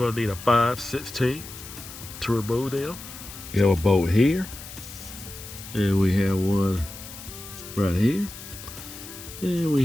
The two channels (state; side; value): noise; left; hiss, 13 dB below the sound